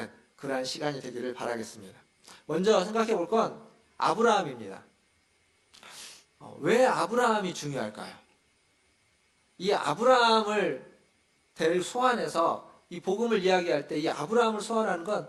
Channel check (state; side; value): identical; both; correlation 1.00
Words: 그러한 시간이 되기를 바라겠습니다. 먼저 생각해 볼 건 아브라함입니다. 왜 아브라함이 중요할까요? 이 아브라함을 소환해서 이 복음을 이야기할 때 이 아브라함을 소환하는 건